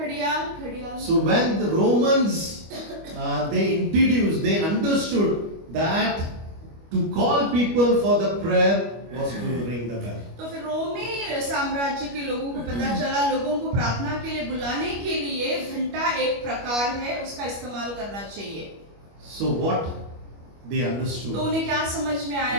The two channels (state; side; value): late; left; 25 ms